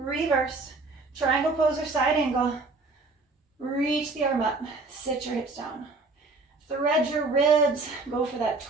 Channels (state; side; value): quieter; left; 3.6 dB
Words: Triangle pose or side angle. Reach the arm up. Sit your hips down. Thread your ribs. Go for that